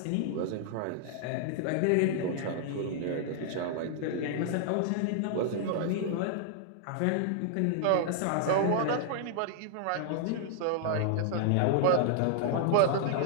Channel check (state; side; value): different; both; correlation -0.01